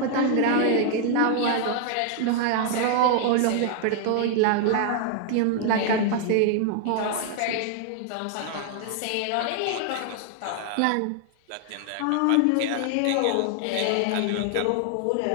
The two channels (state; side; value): different; both; correlation 0.00